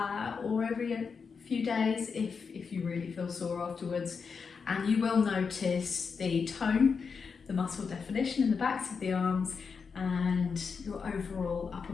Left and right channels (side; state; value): right; quieter; 5.6 dB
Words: or every few days if you really feel sore afterwards, and you will notice the tone, the muscle definition in the backs of the arms, and your overall upper